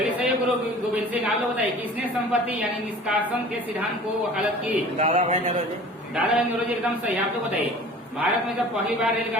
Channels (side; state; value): both; normal; correlation 0.43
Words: सही है, गुरु गोविंद सिंह। आप लोग बताइए, किसने संपत्ति यानी निष्कासन के सिद्धांत को वकालत की? दादा भाई नौरोजी। एकदम सही। आप लोग बताइए, भारत में जब पहली बार